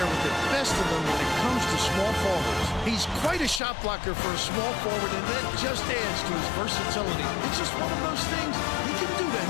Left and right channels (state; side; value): drops out; right; at 3.6 s